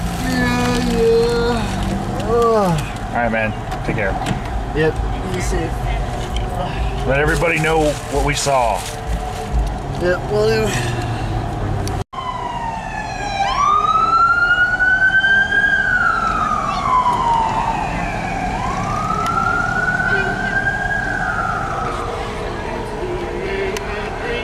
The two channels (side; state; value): both; identical; correlation 1.00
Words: All right, man. Take care. Yep, you safe. Let everybody know what we saw. Yep, will do.